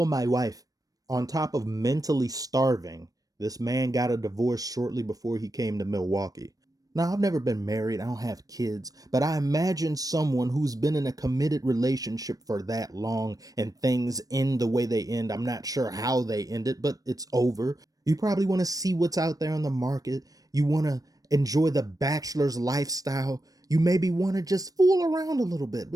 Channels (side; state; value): left; late; 0.18 ms